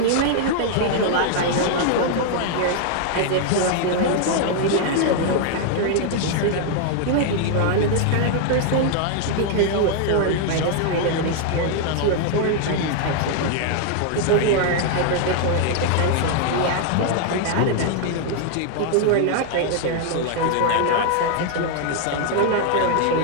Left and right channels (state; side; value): different; both; correlation 0.00